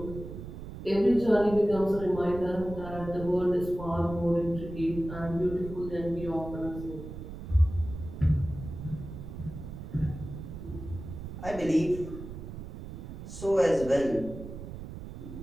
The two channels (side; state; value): right; noise; rumble, 10 dB below the sound